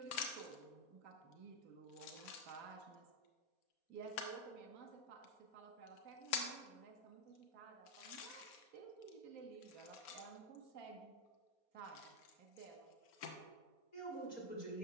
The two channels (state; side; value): late; right; 4.2 ms